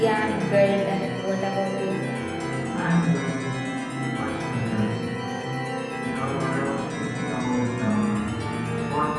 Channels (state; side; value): identical; both; correlation 1.00